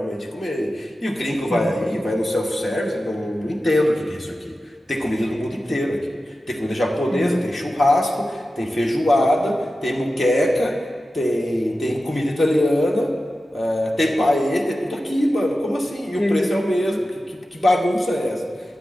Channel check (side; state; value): both; normal; correlation 0.93